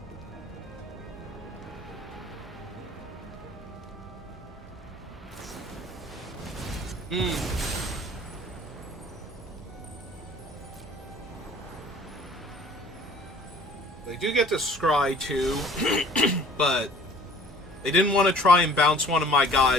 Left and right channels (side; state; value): both; normal; correlation 0.50